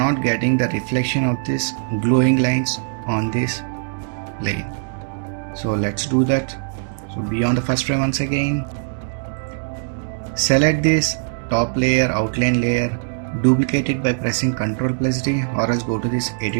getting the reflection of this glowing lines on this plane. So let's do that. So be on the first frame once again, select this top layer, outline layer, duplicate it by pressing Ctrl+D, or else go to this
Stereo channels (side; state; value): left; silent; digital silence